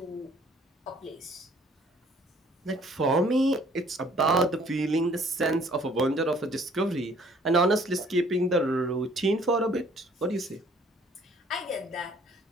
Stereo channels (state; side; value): normal; both; correlation 0.59